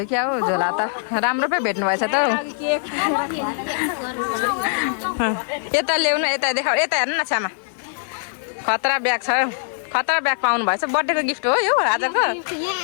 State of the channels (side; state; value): right; silent; 64 dB below the other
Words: क्या हो झोला त राम्रो पो भेट्नु भएछ त हौ यता ल्याउनु यता देखाउ यता हेर्नु न छ्यामा खतरा ब्याग छ खतरा ब्याग पाउनु भएछ बर्थडेको गिफ्ट हो यो आजको